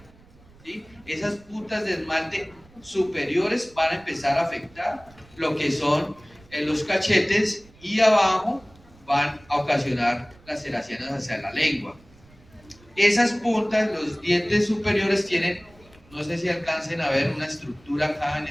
¿sí? Esas puntas de esmalte superiores van a empezar a afectar lo que son los cachetes, y abajo van a ocasionar laceraciones hacia la lengua. Esas puntas, los dientes superiores tienen, no sé si alcancen a ver una estructura acá en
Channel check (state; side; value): noise; right; rumble, 26 dB below the sound